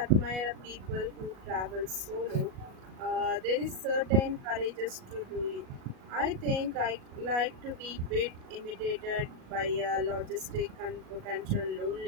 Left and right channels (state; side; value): late; left; 37 ms